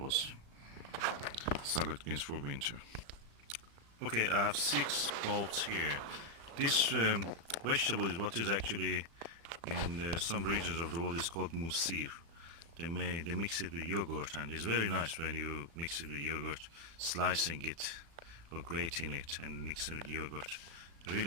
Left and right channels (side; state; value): left; late; 36 ms